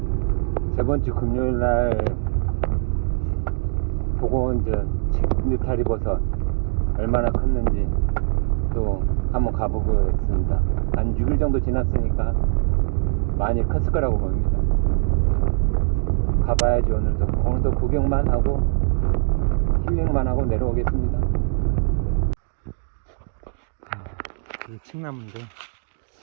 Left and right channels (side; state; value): left; silent; 60 dB below the other